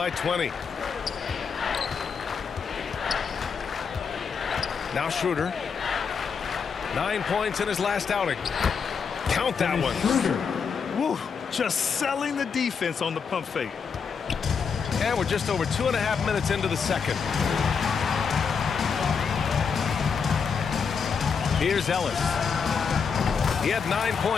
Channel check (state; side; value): quieter; right; 6.1 dB